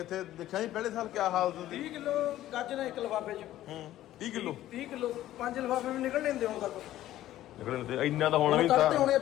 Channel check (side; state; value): right; quieter; 13.8 dB